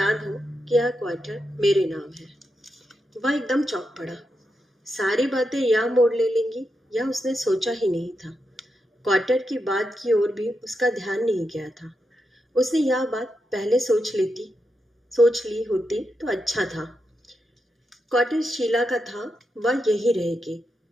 हो कि यह क्वार्टर मेरे नाम है। वह एकदम चौंक पड़ा। सारी बातें यह मोड़ ले लेंगी, यह उसने सोचा ही नहीं था। क्वार्टर की बात की ओर भी उसका ध्यान नहीं गया था। उसने यह बात पहले सोच ली होती तो अच्छा था। क्वार्टर शीला का था, वह यही रहेगी।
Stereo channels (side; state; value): both; normal; correlation 0.86